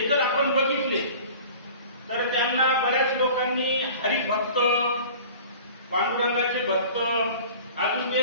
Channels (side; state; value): both; inverted; correlation -0.43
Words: जर आपण बघितले तर त्यांना बऱ्याच लोकांनी हरिभक्त, पांडुरंगाचे भक्त अजून